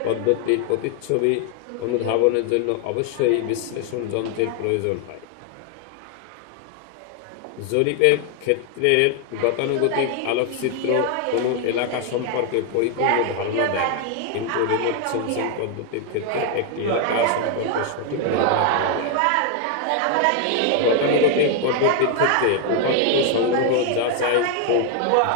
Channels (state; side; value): different; both; correlation 0.00